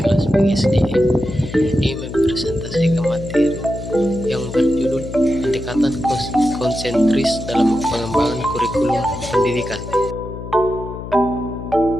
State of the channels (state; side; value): noise; left; hum, 10 dB below the sound